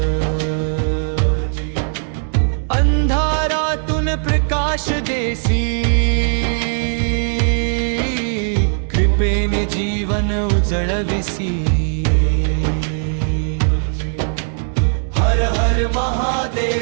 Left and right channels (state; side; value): silent; left; 67 dB below the other